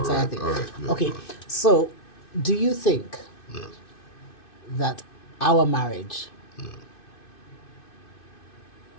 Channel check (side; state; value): right; late; 2.6 ms